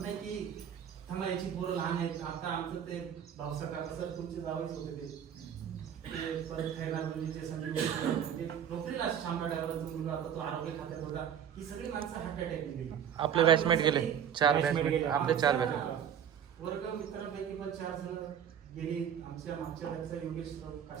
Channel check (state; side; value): quieter; left; 8.8 dB